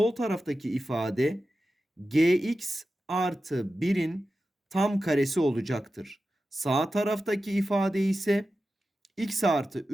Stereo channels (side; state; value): both; normal; correlation 0.93